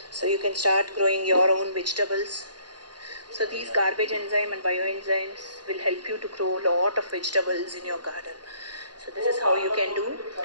So you can start growing your own vegetables. So these garbage enzyme and bioenzymes will help you to grow a lot of vegetables in your garden. So this is how you can do.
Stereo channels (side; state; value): left; late; 0.70 ms